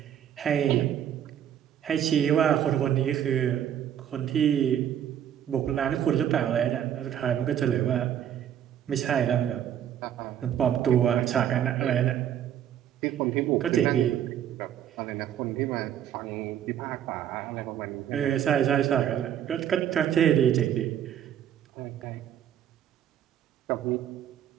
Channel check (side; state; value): left; quieter; 10.1 dB